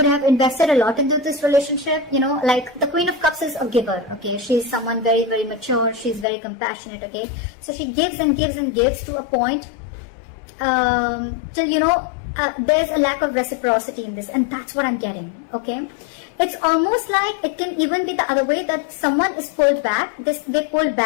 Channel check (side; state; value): right; drops out; at 6.2 s